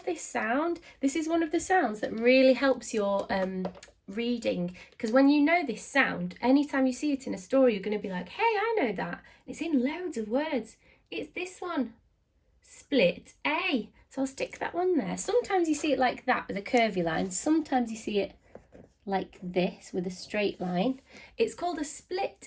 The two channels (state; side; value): identical; both; correlation 1.00